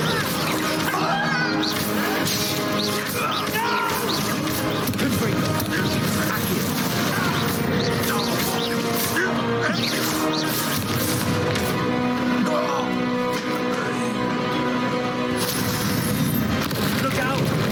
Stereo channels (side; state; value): both; identical; correlation 1.00